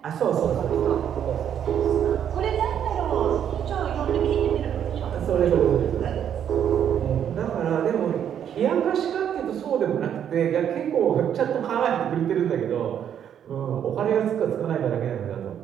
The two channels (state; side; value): quieter; left; 9.2 dB